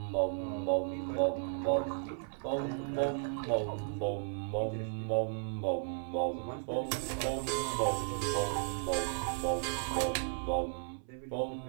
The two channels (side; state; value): left; silent; 54 dB below the other